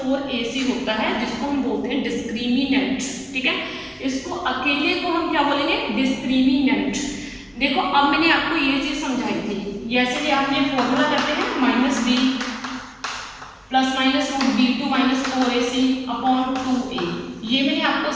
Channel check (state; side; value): identical; both; correlation 1.00